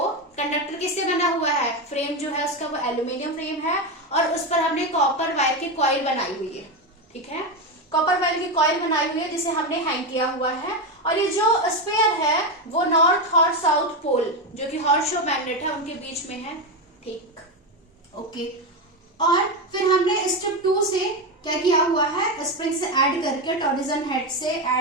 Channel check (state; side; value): normal; both; correlation 0.12